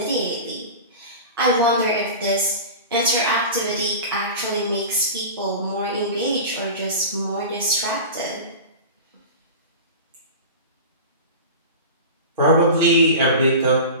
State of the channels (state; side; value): inverted; both; correlation -0.31